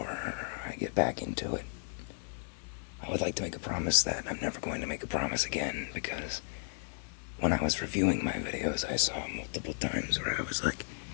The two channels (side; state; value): right; silent; 55 dB below the other